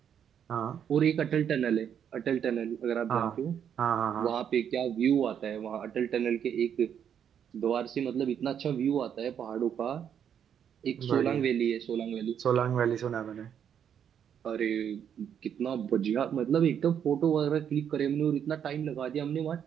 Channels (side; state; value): left; quieter; 8.6 dB